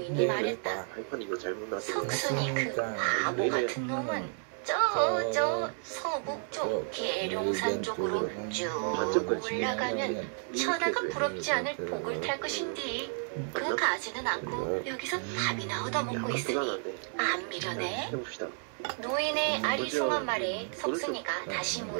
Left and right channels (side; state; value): left; silent; 57 dB below the other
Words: 말했다. 석순이 그 바보 같은 놈은 저 서북쪽 계룡산 쪽으로 쭉 올라가면 천하가 부럽지 않을 복을 탈 것인디 그 가지는 않고 여기서 밥이나 얻어먹고 있으니 안 미련해? 노인의 아리송한 말에 석순이가 다시